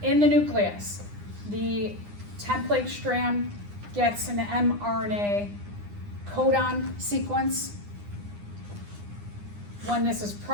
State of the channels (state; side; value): late; left; 9.8 ms